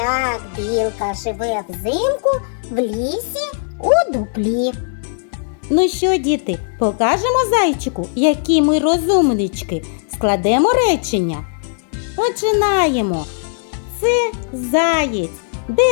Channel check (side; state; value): right; silent; digital silence